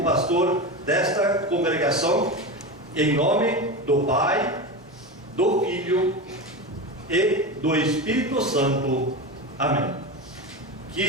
pastor desta congregação em nome do Pai, do Filho e do Espírito Santo. Amém.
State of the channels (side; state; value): both; normal; correlation 0.22